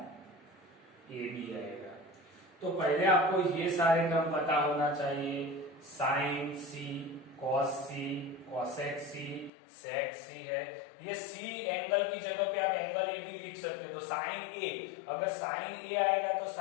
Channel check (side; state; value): right; drops out; at 9.5 s